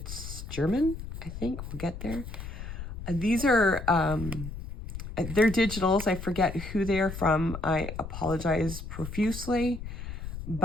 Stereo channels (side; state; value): left; noise; rumble, 9 dB below the sound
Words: German. I think we'll get there. These are they're digitals. I forget who they are from. I apologize profusely,